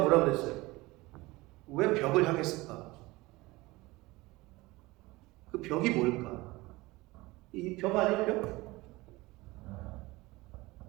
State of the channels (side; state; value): left; quieter; 21.1 dB